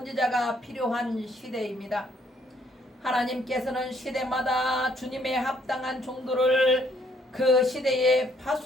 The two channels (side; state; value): both; normal; correlation 0.67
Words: 필요한 시대입니다. 하나님께서는 시대마다 주님의 합당한 종들을 그 시대에